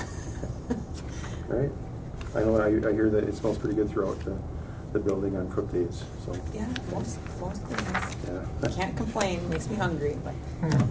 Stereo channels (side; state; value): both; identical; correlation 1.00